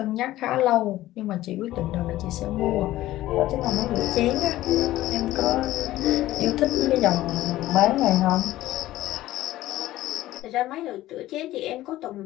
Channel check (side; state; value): right; quieter; 15.4 dB